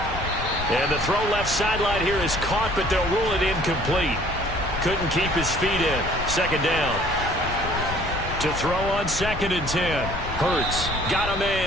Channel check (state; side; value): noise; left; rumble, 9 dB below the sound